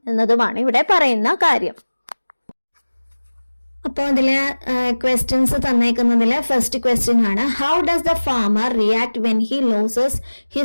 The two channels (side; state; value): both; inverted; correlation -1.00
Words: എന്നതുമാണ് ഇവിടെ പറയുന്ന കാര്യം. അപ്പോൾ അതില് ക്വസ്റ്റ്യൻസ് തന്നേക്കുന്നതില് ഫസ്റ്റ് ക്വസ്റ്റ്യൻ ആണ്, how does the farmer react when he losses